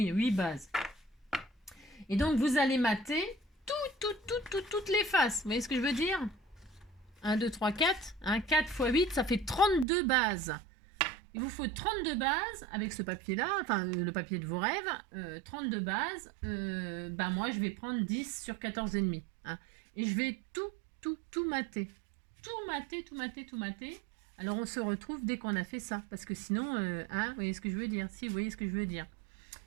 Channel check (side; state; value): left; drops out; at 9.9 s